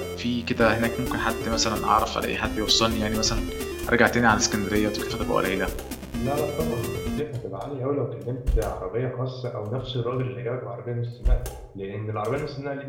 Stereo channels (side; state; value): both; identical; correlation 1.00